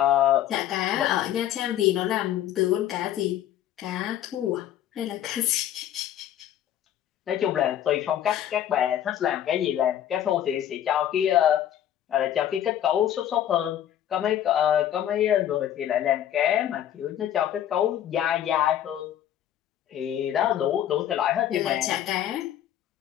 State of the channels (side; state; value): right; quieter; 11.1 dB